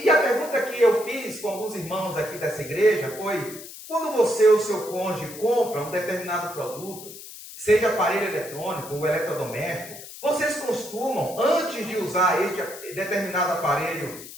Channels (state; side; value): noise; left; hiss, 14 dB below the sound